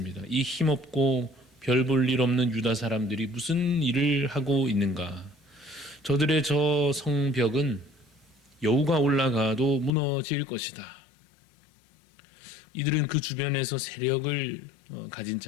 이 힘없고 별 볼 일 없는 유다 사람들이 무슨 일을 하고 있는가? 저들의 저 성벽은 여우가 올라가도 무너질 것이다. 이들은 그 주변에서 세력을 가진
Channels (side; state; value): right; drops out; at 9.9 s